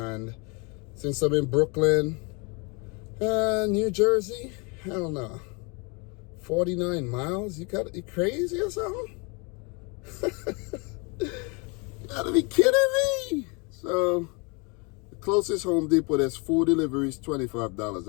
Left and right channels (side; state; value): right; quieter; 31.3 dB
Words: since I'm in Brooklyn, New Jersey, hell no. 49 miles? You crazy or something? You gotta be kidding me. So the closest Home Depot, there's 4 deliveries, $25.